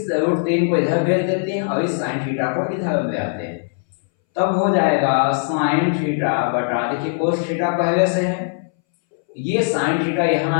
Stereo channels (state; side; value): silent; right; 64 dB below the other